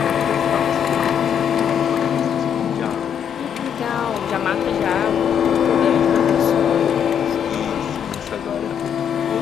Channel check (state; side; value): quieter; right; 8.4 dB